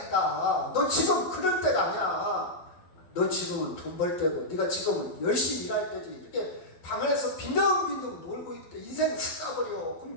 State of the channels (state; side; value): late; right; 11 ms